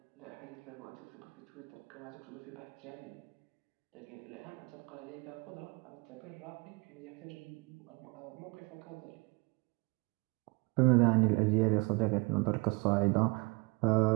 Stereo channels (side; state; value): left; quieter; 27.8 dB